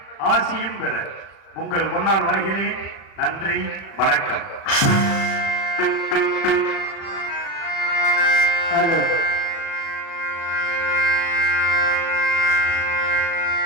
ஆசியும் பெற உங்கள் முன்னால் வருகிறேன். நன்றி, வணக்கம்.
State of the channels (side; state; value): right; late; 37 ms